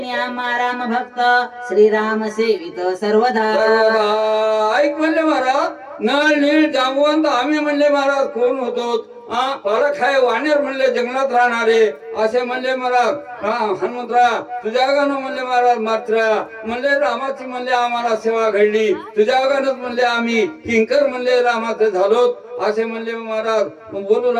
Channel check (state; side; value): identical; both; correlation 1.00